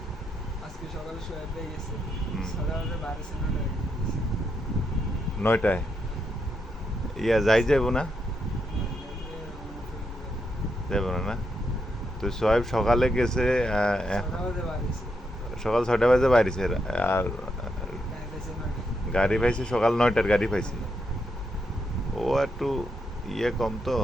আজকে সকালে শোয়া পেয়ে গেছে হুম। সকালে 12:09 নয়টায় যাই যাইব না? যাইব না না? তো সোহেব সকালে গেছে, সকাল 6টা বাজে বাইরেছে, আর গাড়ি পাইছে সকাল 9টার গাড়ি পাইছে। ও একটু ইয়ে কম তো,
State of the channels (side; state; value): both; normal; correlation 0.81